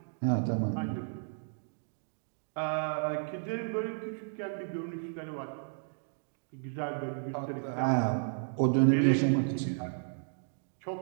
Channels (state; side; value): silent; left; digital silence